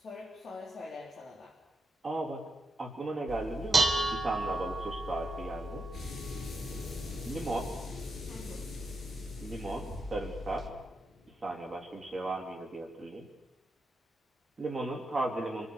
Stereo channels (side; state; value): both; normal; correlation 0.83